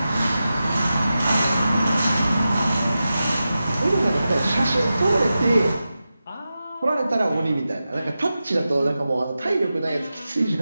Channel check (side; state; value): both; inverted; correlation -0.92